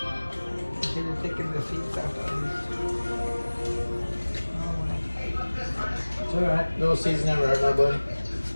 le taking the seeds out. It's all right. Little seeds never hurt nobody.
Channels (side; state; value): both; inverted; correlation -1.00